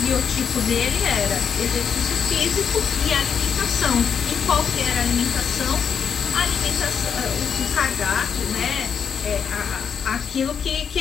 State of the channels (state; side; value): quieter; right; 7.1 dB